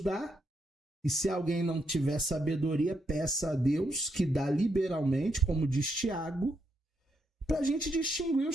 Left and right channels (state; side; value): normal; both; correlation 0.79